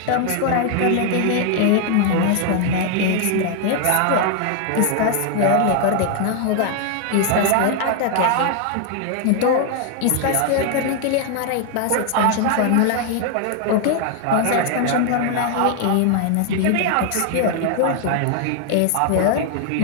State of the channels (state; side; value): different; both; correlation 0.00